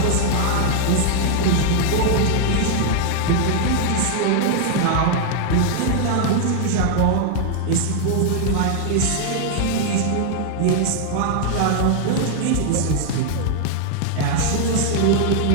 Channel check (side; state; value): both; different; correlation 0.00